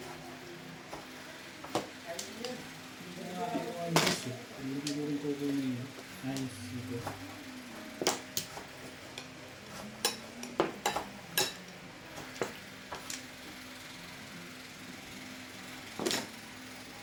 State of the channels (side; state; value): both; identical; correlation 1.00